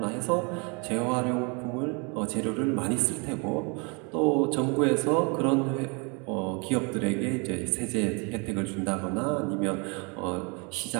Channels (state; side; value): quieter; left; 32.6 dB